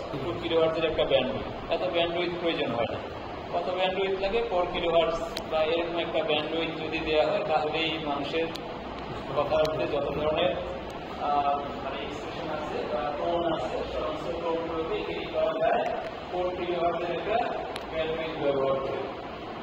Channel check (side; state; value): both; identical; correlation 1.00